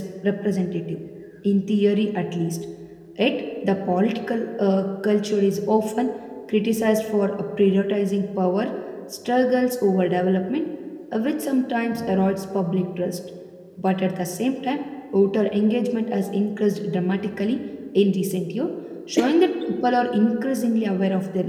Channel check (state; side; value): identical; both; correlation 1.00